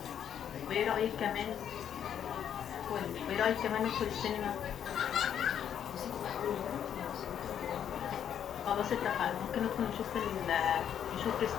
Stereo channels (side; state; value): right; quieter; 9.2 dB